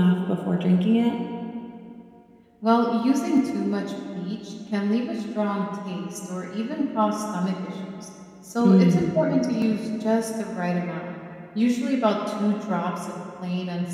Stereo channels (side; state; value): both; identical; correlation 1.00